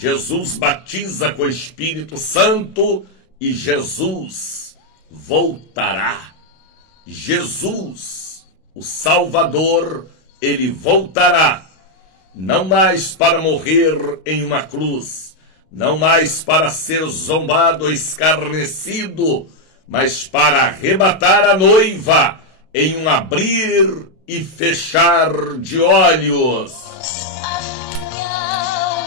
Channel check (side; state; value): right; late; 32 ms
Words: batiza com o Espírito Santo e Jesus voltará. Jesus, o Salvador, ele voltará, não mais para morrer em uma cruz, não mais para ser zombado ou escarnecido, mas para arrebatar a noiva em um abrir e fechar de olhos.